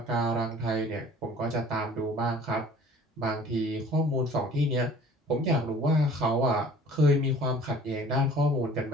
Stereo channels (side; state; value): both; normal; correlation 0.49